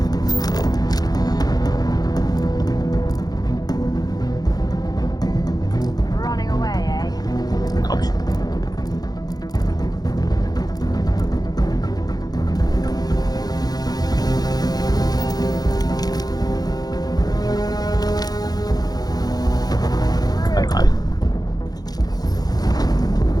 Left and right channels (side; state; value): right; late; 0.19 ms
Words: 拿不去。看哪里？